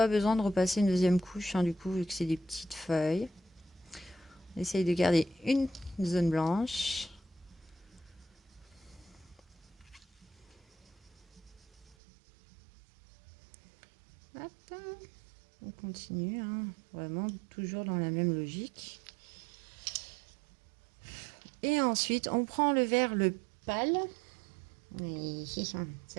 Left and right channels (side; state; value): left; drops out; at 12.0 s